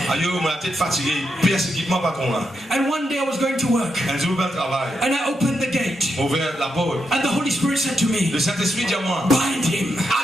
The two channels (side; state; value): both; normal; correlation 0.83